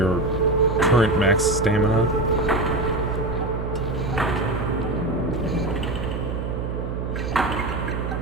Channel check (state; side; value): noise; right; hum, 4 dB below the sound